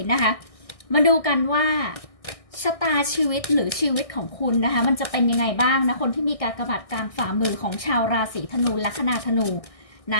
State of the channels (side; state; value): right; late; 1.6 ms